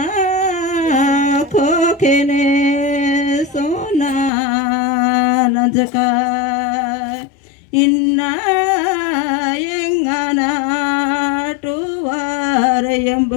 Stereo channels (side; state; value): right; drops out; at 4.3 s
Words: खोखने सोना नजका, इन्ना यंगना टुवार